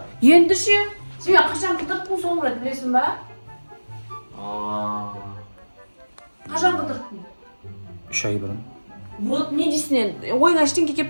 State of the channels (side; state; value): both; inverted; correlation -1.00